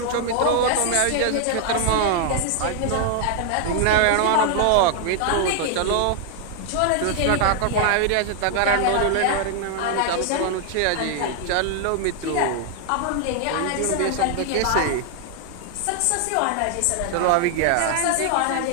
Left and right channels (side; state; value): both; different; correlation 0.00